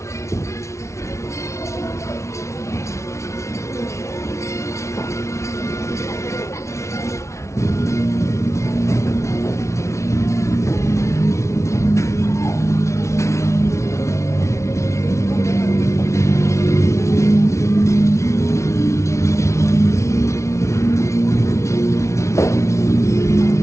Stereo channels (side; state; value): right; late; 0.14 ms